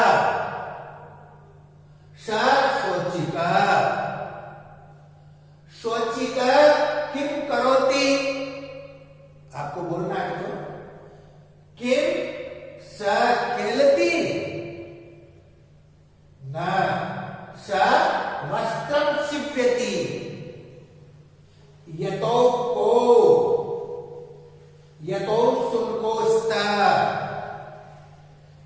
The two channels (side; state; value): both; identical; correlation 1.00